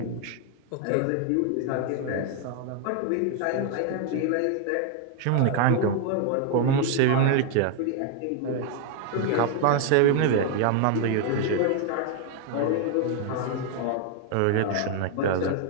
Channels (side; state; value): both; different; correlation 0.00